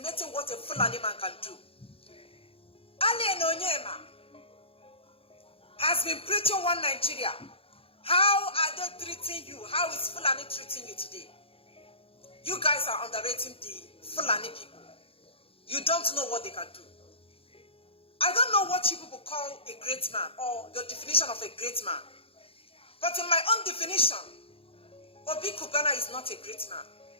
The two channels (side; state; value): right; late; 0.27 ms